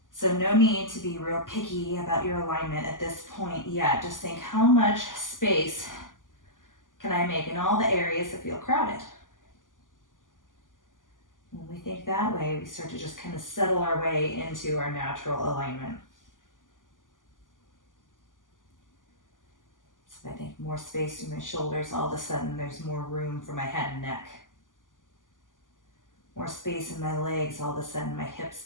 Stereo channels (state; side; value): late; right; 0.88 ms